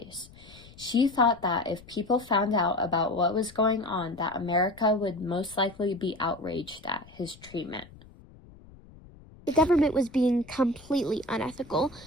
She thought that if people found out about what was going on, that America would most likely be outraged at his treatment. The government was being completely unethical,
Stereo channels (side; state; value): left; noise; rumble, 22 dB below the sound